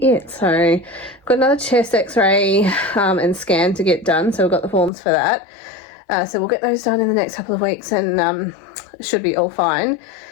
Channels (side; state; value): right; drops out; at 4.9 s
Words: it. So I've got another chest x-ray and scan to get done. So we've got the forms for that. So we'll get those done in the next couple of weeks, and it should be all fine.